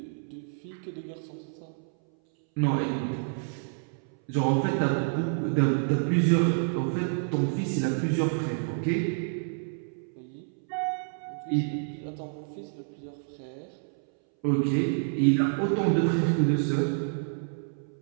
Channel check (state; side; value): silent; left; 59 dB below the other